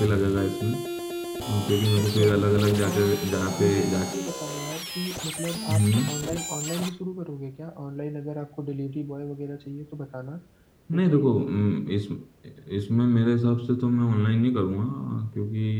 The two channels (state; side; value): identical; both; correlation 1.00